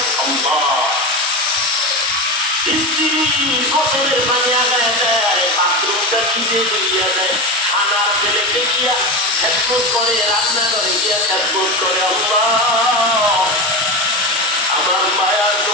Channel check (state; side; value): normal; both; correlation 0.20